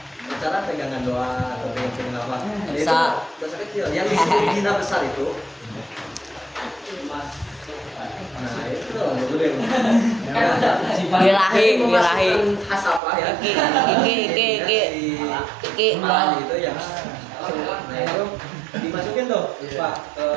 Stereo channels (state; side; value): drops out; left; at 13.0 s